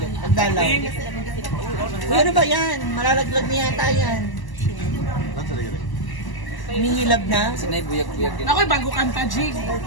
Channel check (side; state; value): right; late; 1.0 ms